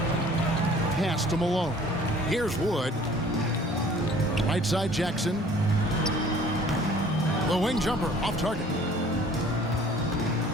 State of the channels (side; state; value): both; normal; correlation 0.52